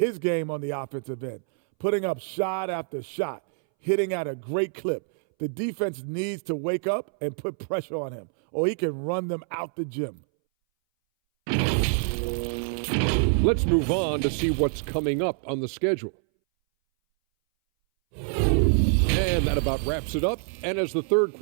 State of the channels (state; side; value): silent; left; 61 dB below the other